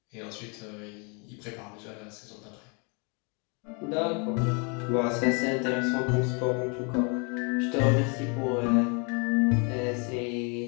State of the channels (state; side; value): quieter; right; 34.1 dB